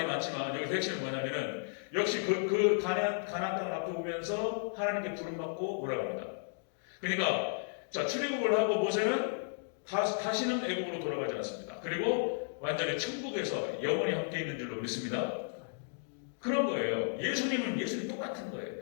많지만 여기 핵심은 뭐냐면은 역시 그 가나안 땅을 앞에 보면서 하나님께 부름받고 올라갑니다. 그러니까 자 출애굽을 하고 모세는 다시는 애굽으로 돌아가지 않습니다. 그리고 완전히 천국에서 영원히 함께 있는 줄로 믿습니다. 그런 거예요. 예수님 똑같은 거예요.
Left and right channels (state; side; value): silent; right; digital silence